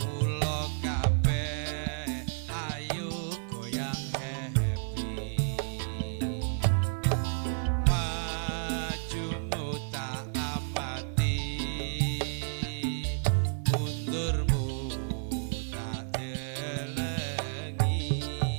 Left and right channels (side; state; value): left; silent; digital silence